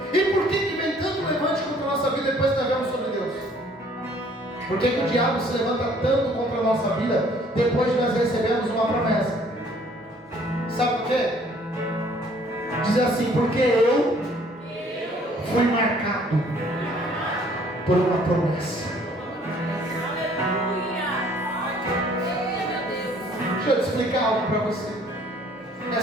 E por que vem tanto levante contra a nossa vida depois que nós vemos sobre Deus? Por que o diabo se levanta tanto contra a nossa vida depois de nós recebemos uma promessa? Sabe por quê? Diz assim, porque eu fui marcado por uma promessa. Deixa eu te explicar algo para você.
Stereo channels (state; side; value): normal; both; correlation 0.59